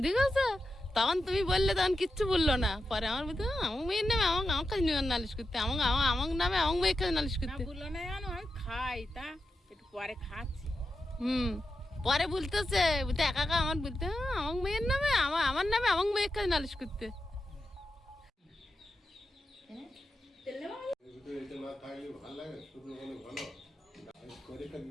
দিক আছে। তখন তুমি বললে, তখন কিচ্ছু বললো না। পরে আমার বলতে আমার মেয়ের নামে আমার কাছে নিয়ে নালিশ করতে, আমার নামে আমার মেয়ের কাছে নালিশ না করতে। বললো না জানো, আমি খাই তা একটু পরে খাচ্ছি। পরে বলতেছে, বলতে একা একা আমার বলতে আমার মেয়ের নামে আমার নামে আমার মেয়ের কাছে নালিশ করতে। এটা না থাকলে ভালো লাগে, শুধু মানে ভালো পরীক্ষা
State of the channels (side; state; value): both; normal; correlation 0.89